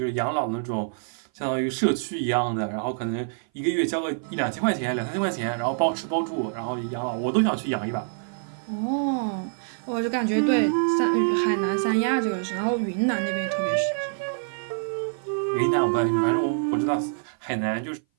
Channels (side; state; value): left; silent; 57 dB below the other